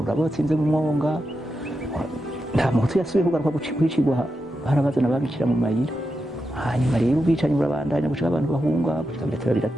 mu mwonga nta muhutu yasubiye kugaruka kwicigwa harabazana babicira mu mayira hanyuma rero ubwicanyi burabandanya gushika abantu bahunga gushika biraturabira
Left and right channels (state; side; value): normal; both; correlation 0.88